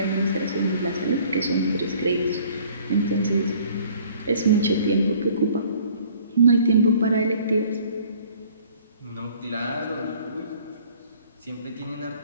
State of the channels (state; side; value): inverted; both; correlation -0.55